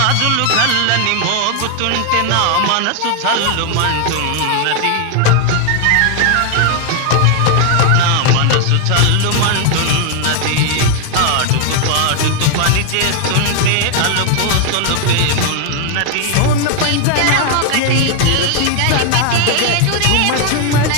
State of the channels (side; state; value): both; different; correlation 0.00